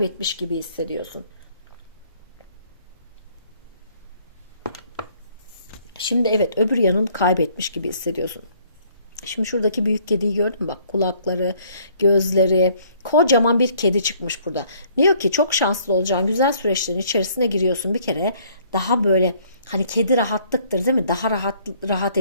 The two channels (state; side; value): inverted; both; correlation -0.61